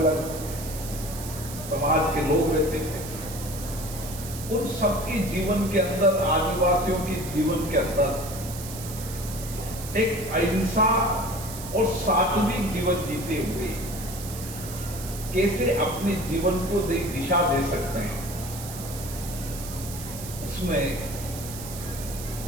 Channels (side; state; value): right; noise; hiss, 11 dB below the sound